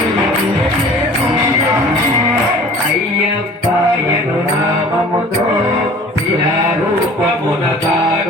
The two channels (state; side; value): normal; both; correlation 0.47